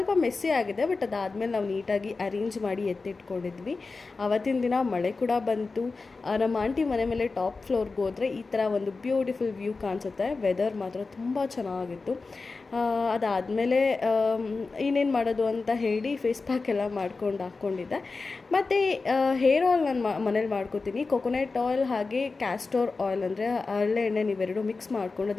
ಮೆಸ್ಸಿ ಆಗಿದೆ, ಬಟ್ ಅದಾದಮೇಲೆ ನಾವು ನೀಟಾಗಿ ಅರೇಂಜ್ ಮಾಡಿ ಎತ್ತಿಟ್ಕೊಂಡಿದ್ವಿ. ಆವತ್ತಿನ ದಿನ ಮಳೆ ಕೂಡ ಬಂತು. ನಮ್ಮ ಆಂಟಿ ಮನೆ ಮೇಲೆ ಟಾಪ್ ಫ್ಲೋರ್ಗೆ ಹೋದರೆ ಈ ಥರ ಒಂದು ಬ್ಯೂಟಿಫುಲ್ ವ್ಯೂ ಕಾಣಿಸುತ್ತೆ. ವೆದರ್ ಮಾತ್ರ ತುಂಬ ಚೆನ್ನಾಗಿತ್ತು. ಅದಾದಮೇಲೆ ಇನ್ನೇನು ಮಾಡೋದು ಅಂತ ಹೇಳಿ ಫೇಸ್ ಪ್ಯಾಕ್ ಎಲ್ಲ ಮಾಡ್ಕೊಂಡು ಹಾಕ್ಕೊಂಡಿದ್ದೆ. ಮತ್ತು ಹೇರ್ ಆಯಿಲ್ ನಾನು ಮನೇಲಿ ಮಾಡ್ಕೋತೀನಿ. ಕೊಕೊನೆಟ್ ಆಯಿಲ್ ಹಾಗೆ ಕ್ಯಾಸ್ಟೋರ್ ಆಯಿಲ್ ಅಂದರೆ ಹರಳೆ ಎಣ್ಣೆ ನೀವೆರಡು ಮಿಕ್ಸ್ ಮಾಡ್ಕೊಂಡು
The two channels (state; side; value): quieter; right; 4.0 dB